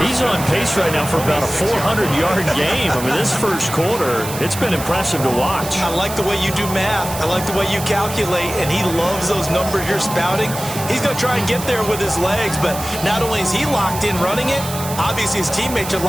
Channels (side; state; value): right; noise; hiss, 10 dB below the sound